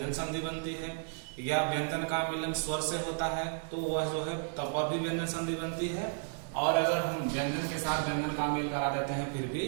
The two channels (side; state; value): left; silent; digital silence